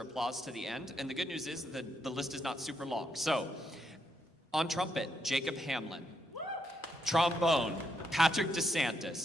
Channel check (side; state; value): both; normal; correlation 0.78